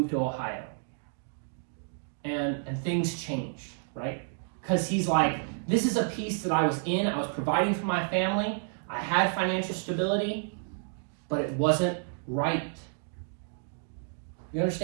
to Ohio. And things changed, right? Because he's like, this is a piece that I was in. I was providing for my family. I had financial stability, but it wasn't right. You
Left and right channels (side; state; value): left; silent; 58 dB below the other